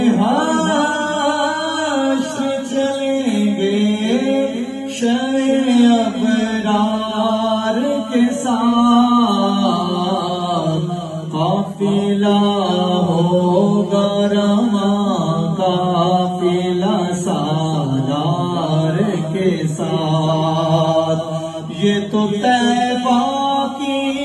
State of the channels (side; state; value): both; identical; correlation 1.00